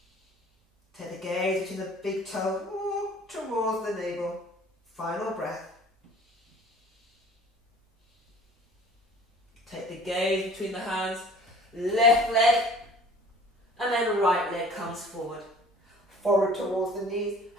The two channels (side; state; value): both; normal; correlation 0.48